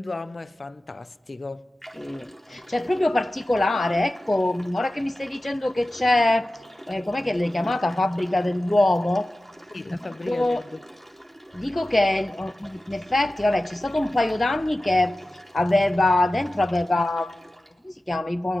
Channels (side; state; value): both; normal; correlation 0.95